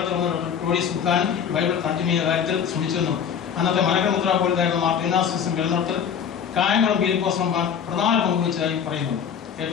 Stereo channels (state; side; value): quieter; right; 7.8 dB